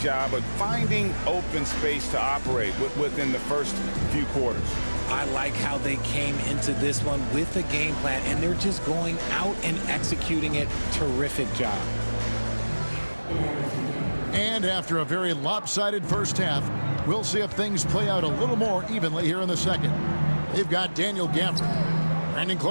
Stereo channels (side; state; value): both; inverted; correlation -1.00